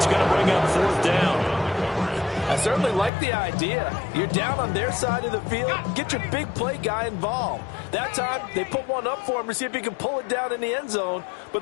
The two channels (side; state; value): right; drops out; at 3.1 s